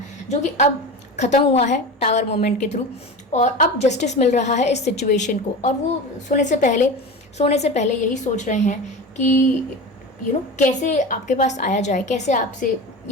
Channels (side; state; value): both; normal; correlation 0.29